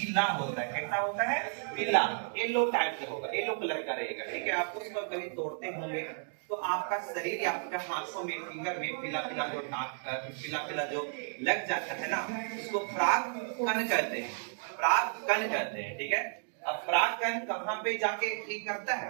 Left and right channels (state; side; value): silent; left; 56 dB below the other